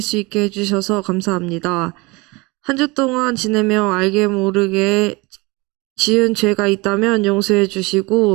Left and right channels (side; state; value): left; quieter; 25.0 dB